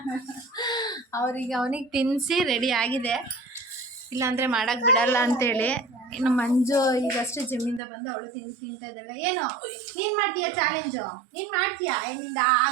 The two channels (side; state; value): left; drops out; at 7.8 s